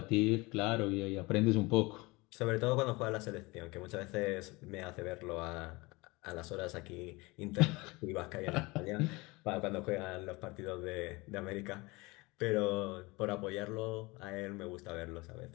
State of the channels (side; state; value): right; quieter; 23.9 dB